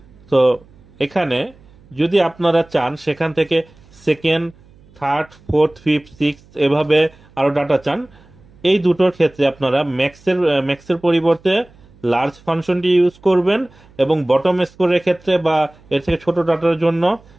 তো এখানে যদি আপনারা চান সেখান থেকে second, third, fourth, fifth, six এভাবে আরো ডাটা চান, এই দুটোর ক্ষেত্রে আপনারা ম্যাক্সের পরিবর্তে লার্জ ফাংশনটি ইউজ করবেন, এবং বটম স্কোরের ক্ষেত্রে বা এর থেকে ছোট ডাটার জন্য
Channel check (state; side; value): noise; right; hum, 27 dB below the sound